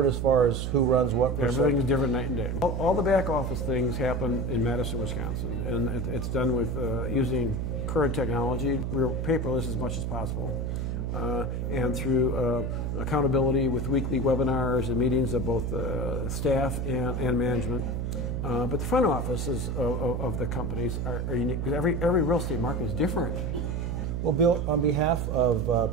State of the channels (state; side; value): noise; right; hum, 1 dB below the sound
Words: as far as who runs what percent? Everything's different night and day. All the back office things happen in Madison, Wisconsin, and it's done with using current technology. We're paperless as much as possible, and through accountability with weekly webinars and meetings of both staff and management. But the front offices of the companies are unique because every real estate market is different. Well, Bill, on behalf